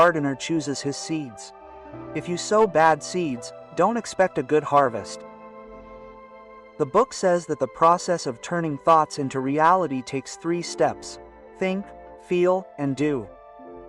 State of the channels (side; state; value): both; identical; correlation 1.00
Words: chooses his seeds. If you sow bad seeds, don't expect a good harvest. The book says that the process of turning thoughts into reality takes 3 steps: think, feel, and do.